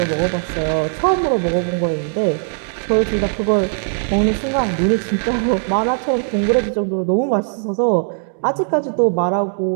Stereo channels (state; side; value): silent; left; 67 dB below the other